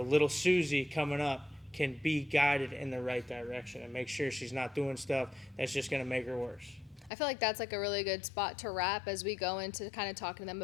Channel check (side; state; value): right; drops out; at 7.1 s